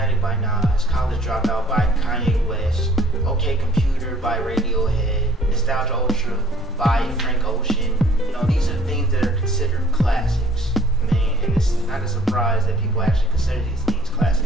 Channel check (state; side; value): normal; both; correlation 0.57